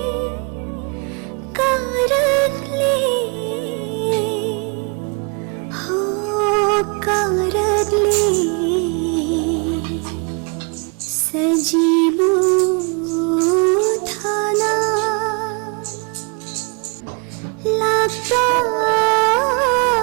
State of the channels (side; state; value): left; quieter; 34.3 dB